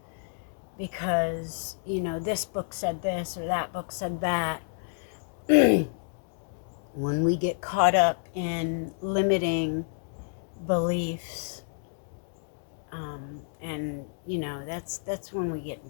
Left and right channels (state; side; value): silent; right; digital silence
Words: because, this book said this or that book said that. When we get caught up in limiting beliefs, and that's when we get in